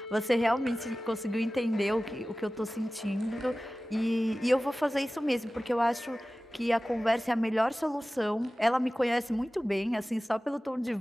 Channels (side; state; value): both; normal; correlation 0.97